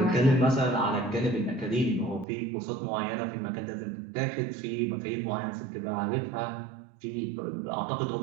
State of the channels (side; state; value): left; drops out; at 2.2 s